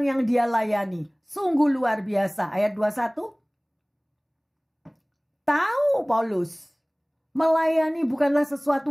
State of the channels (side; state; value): both; identical; correlation 1.00